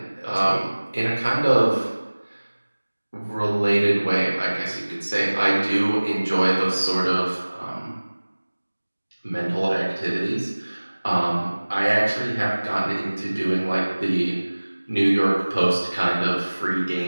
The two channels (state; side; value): inverted; both; correlation -1.00